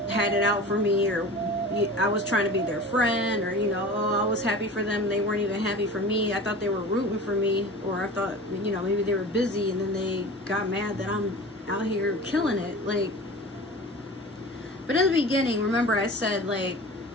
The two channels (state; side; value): normal; both; correlation 0.36